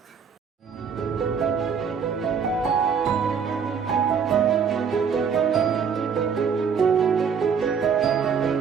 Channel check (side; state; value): left; quieter; 6.6 dB